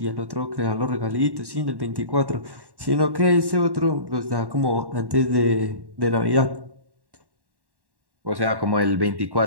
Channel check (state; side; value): late; left; 1.1 ms